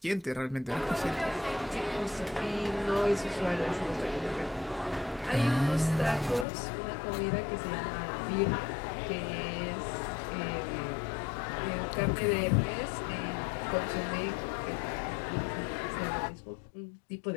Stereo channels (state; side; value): drops out; right; at 6.5 s